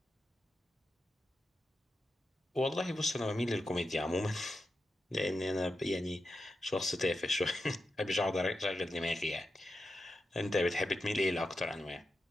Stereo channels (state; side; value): normal; both; correlation 0.89